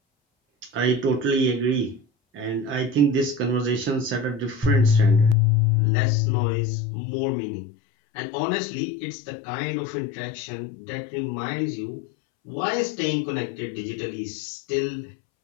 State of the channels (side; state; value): right; drops out; at 5.4 s